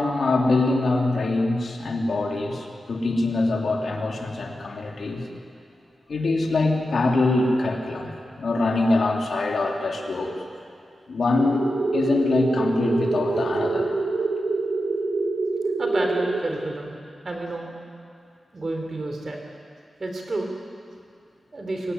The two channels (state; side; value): normal; both; correlation 0.90